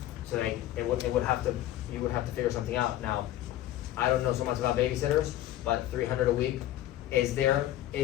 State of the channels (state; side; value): quieter; right; 13.7 dB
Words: So like, you would have to figure something out. Now, I don't know so much about babysitters, but 300 a week, is there